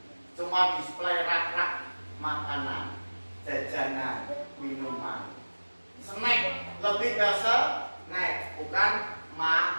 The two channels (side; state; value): both; inverted; correlation -1.00